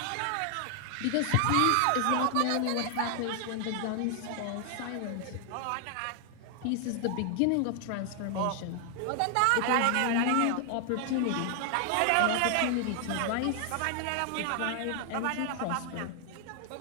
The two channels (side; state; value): both; different; correlation 0.00